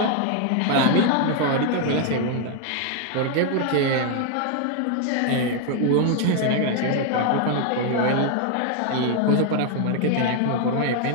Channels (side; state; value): both; different; correlation 0.00